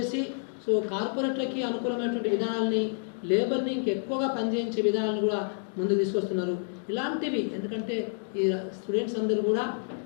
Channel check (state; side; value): silent; right; digital silence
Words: సో కార్పొరేట్లకి అనుకూలమైనటువంటి విధానాలని లేబర్ని ఇంకెక్కువగా పనిచేయించే విధానాలను కూడా ముందు తీసుకొస్తున్నారు. ఇలాంటివి ఎందుకంటే ఈ స్టూడెంట్స్ అందరూ కూడా